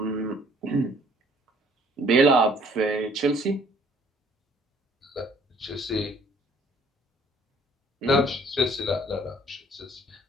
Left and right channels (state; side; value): normal; both; correlation 0.59